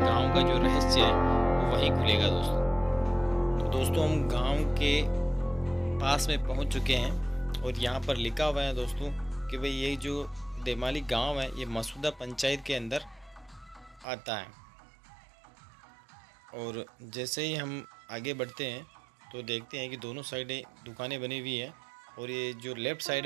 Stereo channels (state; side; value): drops out; left; at 14.1 s